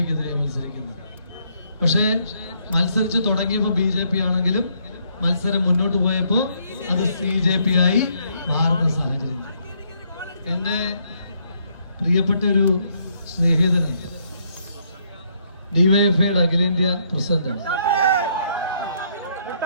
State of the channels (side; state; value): both; inverted; correlation -0.71